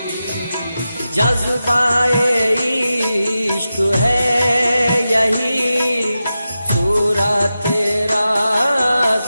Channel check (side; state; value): both; inverted; correlation -0.91